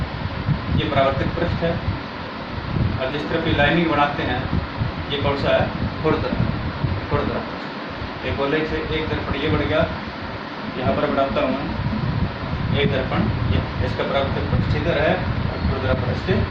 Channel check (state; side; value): identical; both; correlation 1.00